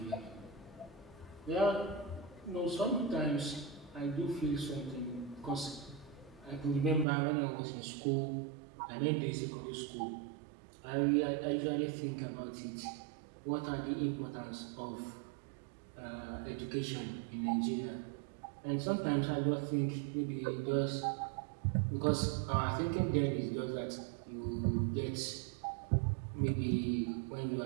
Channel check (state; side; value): drops out; left; at 7.1 s